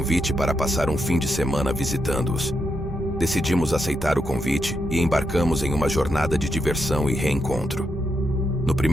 para passar um fim de semana visitando-os. Decidimos aceitar o convite e embarcamos em uma jornada de diversão e reencontro. No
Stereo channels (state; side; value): normal; both; correlation 0.82